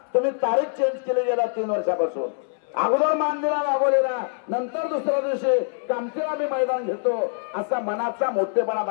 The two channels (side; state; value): right; silent; 62 dB below the other